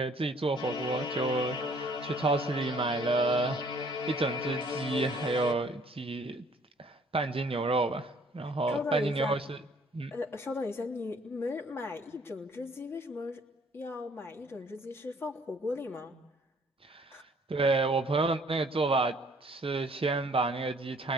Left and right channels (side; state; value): both; normal; correlation 0.59